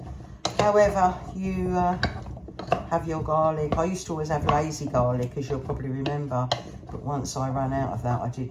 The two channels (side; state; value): both; identical; correlation 1.00